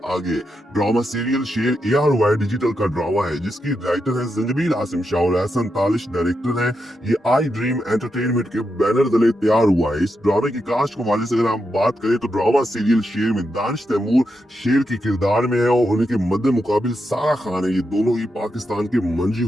आगे। ड्रामा सीरियल शेर ARY डिजिटल का ड्रामा है जिसकी राइटर है जंजबील आसिम शाह और एहसन तालिश डायरेक्टर है। ये आई ड्रीम एंटरटेनमेंट के बैनर तले तैयार हुआ है। इस ड्रामे की कास्ट के हवाले से अगर हम बात करें तो ड्रामा सीरियल शेर में दानिश तैमूर शेर के किरदार में है और उनके मद्दे मुकाबिल सारा खान है। ये दोनों ही पाकिस्तान के मंजी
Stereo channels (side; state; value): both; normal; correlation 0.85